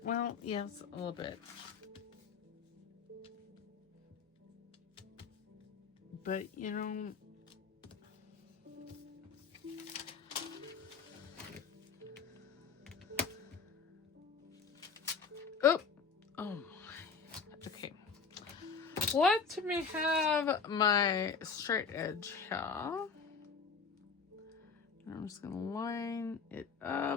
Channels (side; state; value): right; quieter; 5.4 dB